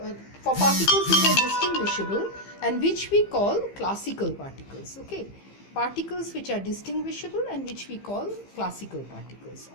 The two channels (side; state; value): right; late; 15 ms